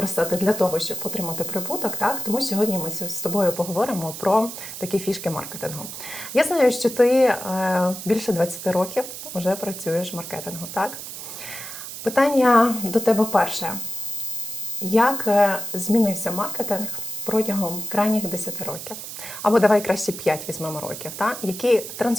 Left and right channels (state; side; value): noise; right; hiss, 10 dB below the sound